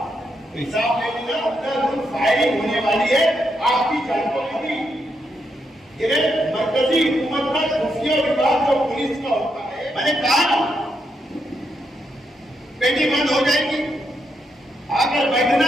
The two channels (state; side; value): normal; both; correlation 0.81